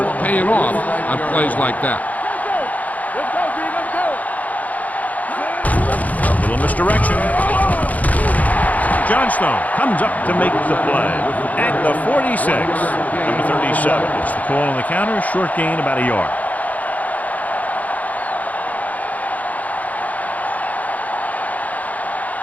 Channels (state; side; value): late; right; 0.075 ms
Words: paying off on plays like that. A little misdirection. Johnstone comes up to make the play at the 46. Number 37. It's the call on the counter. Short gain, about a yard.